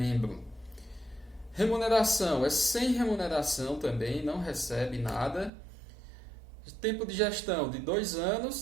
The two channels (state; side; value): drops out; left; at 5.5 s